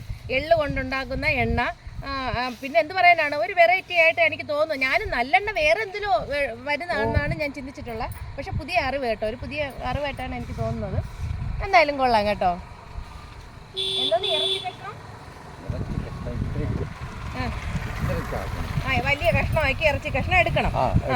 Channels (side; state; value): both; identical; correlation 1.00